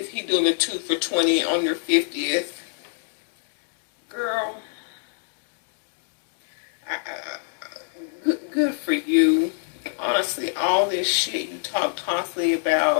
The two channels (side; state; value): right; silent; digital silence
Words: he doing a 2 for $20 on your 50th? Girl. Good for you. Honestly, all this shit you talk constantly